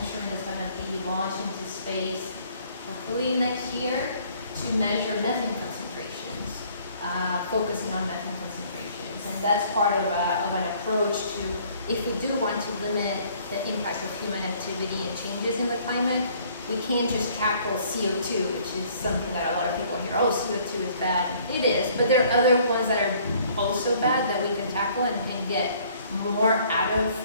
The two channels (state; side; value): inverted; both; correlation -0.59